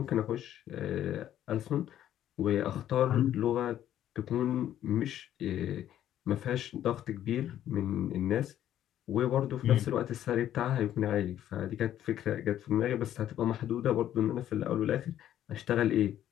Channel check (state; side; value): quieter; right; 11.5 dB